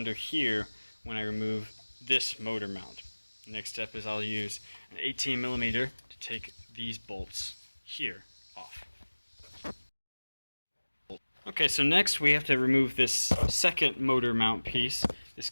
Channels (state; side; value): inverted; both; correlation -1.00